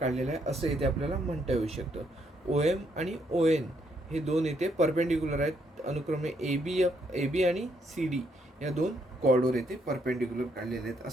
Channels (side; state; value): both; normal; correlation 0.73